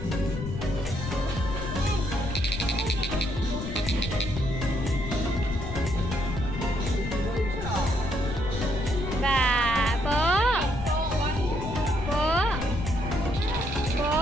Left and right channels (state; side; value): noise; left; rumble, 6 dB below the sound